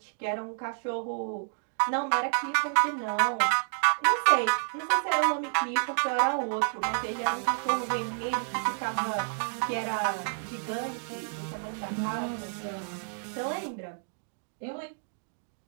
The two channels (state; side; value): silent; left; digital silence